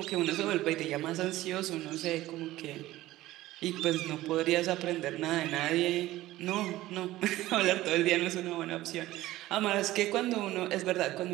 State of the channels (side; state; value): left; quieter; 16.3 dB